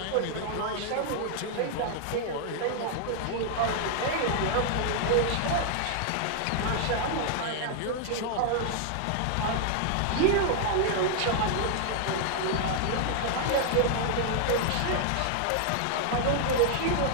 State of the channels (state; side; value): different; both; correlation 0.00